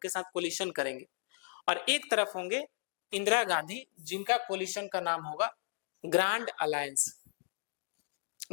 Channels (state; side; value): silent; right; digital silence